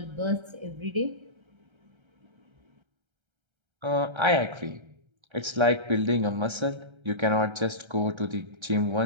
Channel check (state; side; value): late; left; 1.3 ms